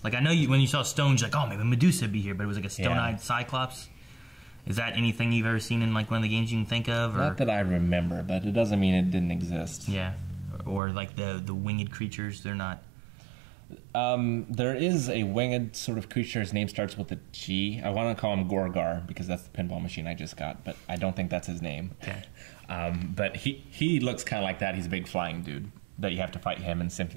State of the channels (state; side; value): drops out; left; at 10.8 s